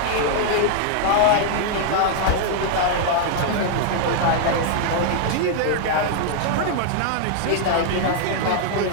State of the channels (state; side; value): different; both; correlation 0.00